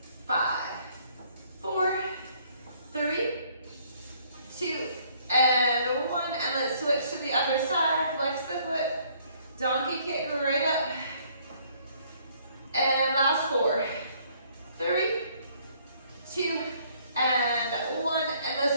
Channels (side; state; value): both; inverted; correlation -0.63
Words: 5, 4, 3, 2, and 1. And let's switch to the other side. Flex the foot. Donkey kick right up. And last 4, 3, 2, and 1. And